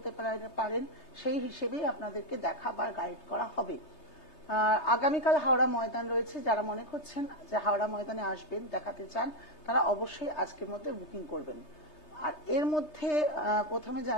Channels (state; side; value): late; right; 3.3 ms